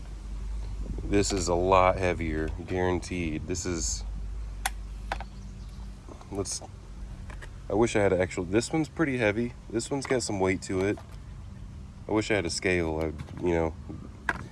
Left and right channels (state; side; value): identical; both; correlation 1.00